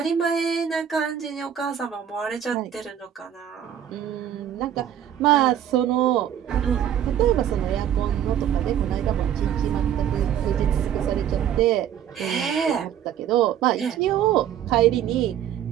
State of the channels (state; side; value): quieter; left; 9.9 dB